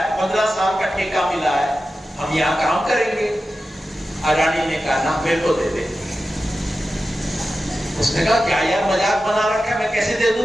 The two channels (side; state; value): both; normal; correlation 0.93